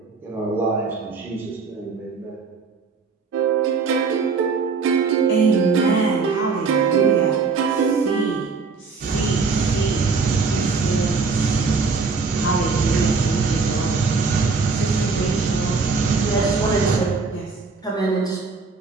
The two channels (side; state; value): left; quieter; 4.6 dB